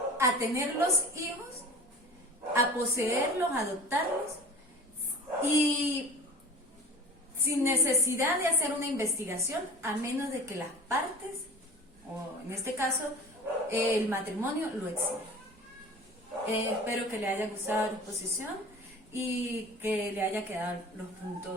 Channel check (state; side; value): normal; both; correlation 0.39